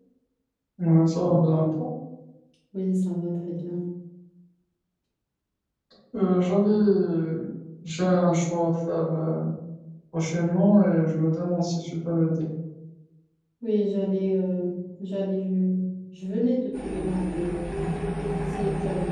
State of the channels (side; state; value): both; identical; correlation 1.00